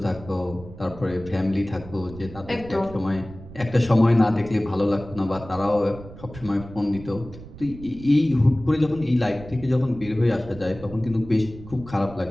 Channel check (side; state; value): right; noise; rumble, 16 dB below the sound